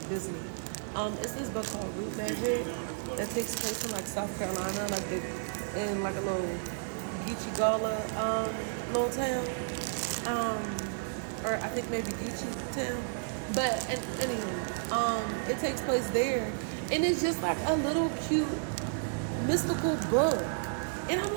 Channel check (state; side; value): silent; left; digital silence